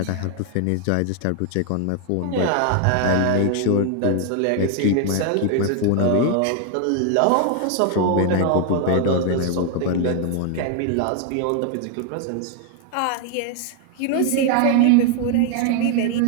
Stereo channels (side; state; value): both; different; correlation 0.00